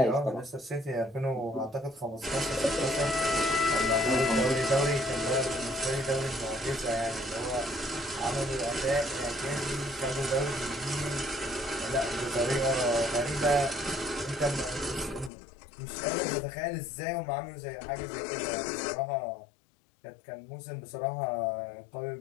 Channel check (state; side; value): drops out; right; at 15.3 s